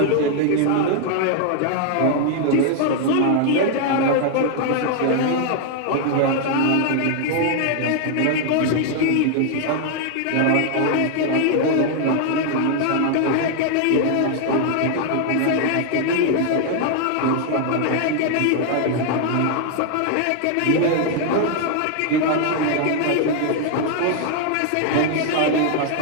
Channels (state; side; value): different; both; correlation 0.00